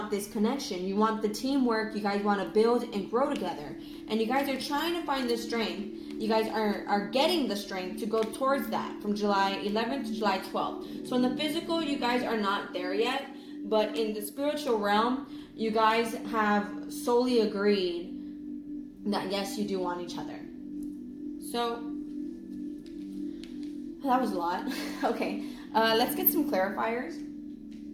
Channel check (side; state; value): both; identical; correlation 1.00